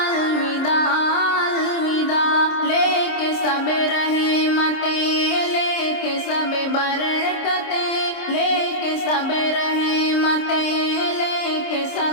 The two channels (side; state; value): right; late; 26 ms